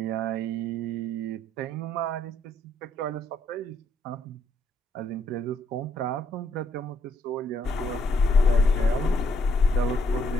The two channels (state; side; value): normal; both; correlation 0.71